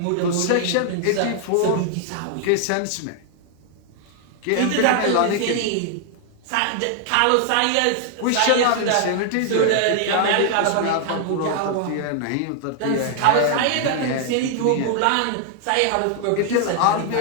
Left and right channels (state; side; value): different; both; correlation 0.00